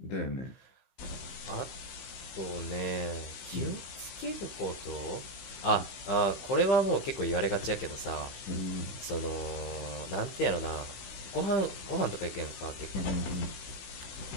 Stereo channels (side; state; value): right; late; 15 ms